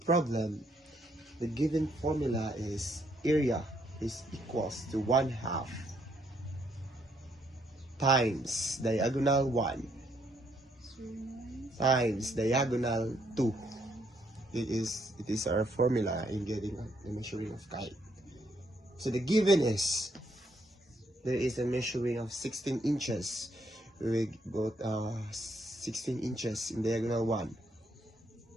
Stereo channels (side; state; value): both; normal; correlation 0.72